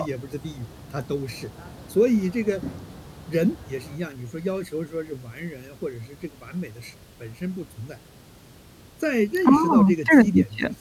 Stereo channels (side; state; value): both; identical; correlation 1.00